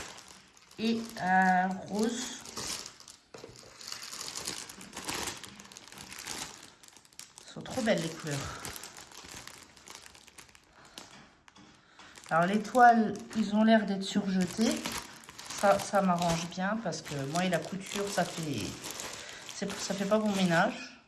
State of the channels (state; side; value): identical; both; correlation 1.00